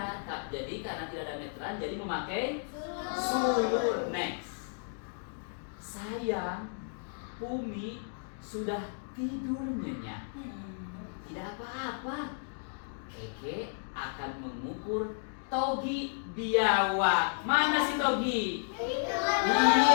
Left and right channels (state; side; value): silent; right; digital silence